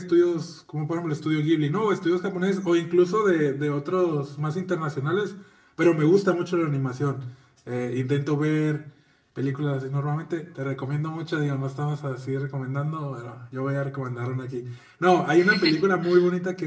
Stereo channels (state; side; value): identical; both; correlation 1.00